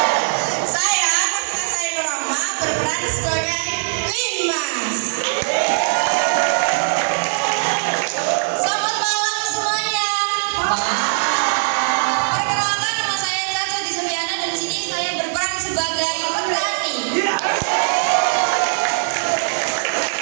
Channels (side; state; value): left; silent; digital silence